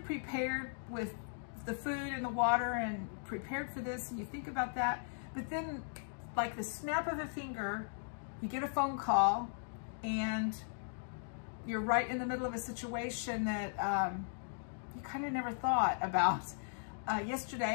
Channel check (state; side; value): silent; right; digital silence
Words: prepared with the food and the water and prepared for this and you think about that, but then like the snap of a finger, you get a phone call and you're right in the middle of a situation that you kind of never thought about.